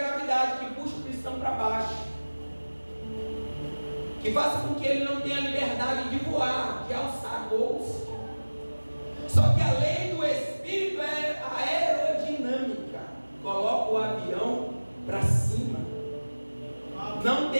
que puxa o cristão para baixo, que faz com que ele não tenha liberdade de voar, de alçar voos. Só que a lei do Espírito é a aerodinâmica, coloca o avião para cima, não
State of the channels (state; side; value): inverted; both; correlation -1.00